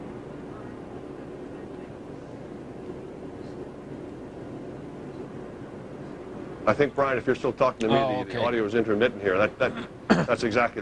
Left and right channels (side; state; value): both; identical; correlation 1.00